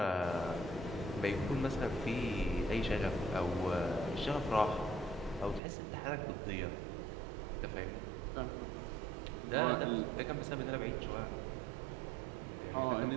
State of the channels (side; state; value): left; drops out; at 5.6 s